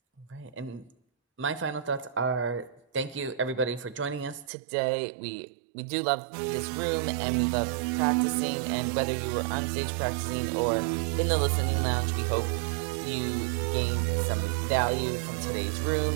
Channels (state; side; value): drops out; left; at 4.5 s